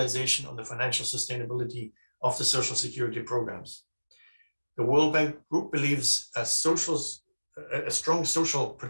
on the financial sustainability of the social security programs. The World Bank Group believes a strong social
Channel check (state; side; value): inverted; both; correlation -1.00